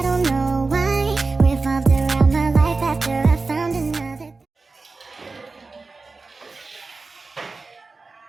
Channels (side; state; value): left; quieter; 3.9 dB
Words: don't know why. Revolved around my life after I found another.